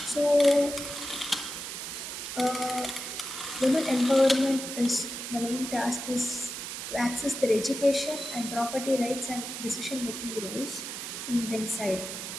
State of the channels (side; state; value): right; noise; hiss, 7 dB below the sound